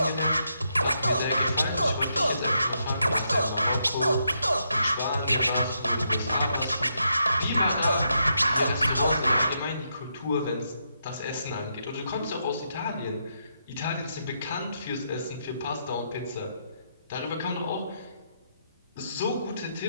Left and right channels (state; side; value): inverted; both; correlation -0.80